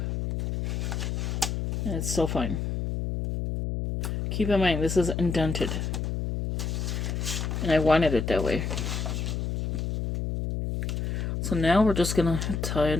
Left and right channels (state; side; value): noise; left; hum, 2 dB below the sound